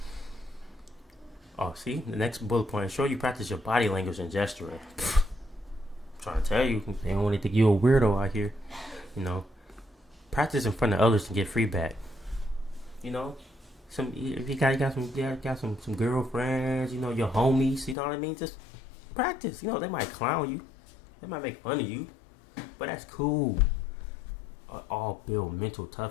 Oh, see? The next bullet point. Show you practice your body language and gesturing. I'm trying to tell you. They don't want to think you a weirdo out here. Practice in front of others to get feedback. If you got some girlfriends, your homies, you know what I mean? Just practice. They might clown you. They might make fun of you. But that's cool. All build mental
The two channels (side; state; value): right; drops out; at 17.9 s